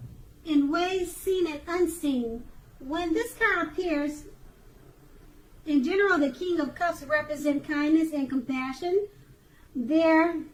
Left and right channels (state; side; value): identical; both; correlation 1.00